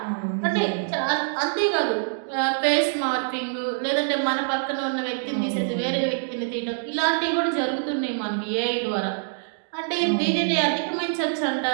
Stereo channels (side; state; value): left; silent; digital silence